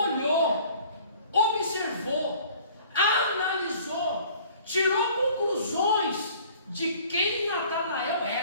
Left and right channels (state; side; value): inverted; both; correlation -0.52